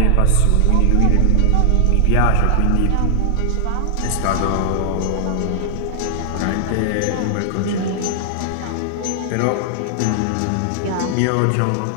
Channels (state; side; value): different; both; correlation 0.00